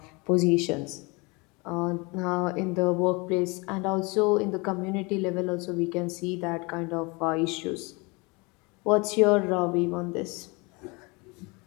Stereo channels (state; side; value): quieter; right; 27.6 dB